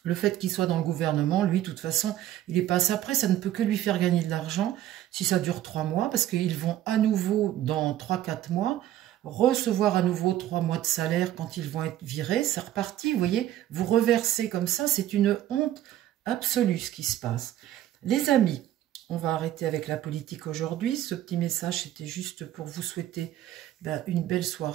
Le fait qu'il soit dans le gouvernement, lui, de toute façon, il est passé après. Ça ne peut que lui faire gagner de l'argent si ça dure 3 mois parce qu'ils vont à nouveau, dans 3-4 mois, recevoir à nouveau 3 mois de salaire quand ils vont être virés. C'est reparti, vous voyez, vous reversez comme ça. C'est une honte absolue ce qui se passe. Les amis, on va arrêter avec la politique aujourd'hui. Ce petit message, c'était juste pour vous souhaiter une belle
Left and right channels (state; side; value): quieter; left; 12.7 dB